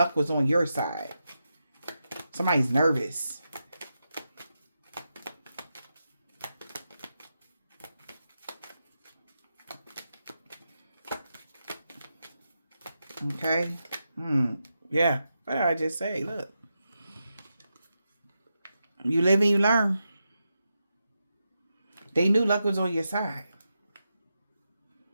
was on your side. Somebody's nervous. Okay. Yeah. What did I just say? Look. You live and you learn. They knew luck was on your side.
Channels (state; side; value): inverted; both; correlation -0.87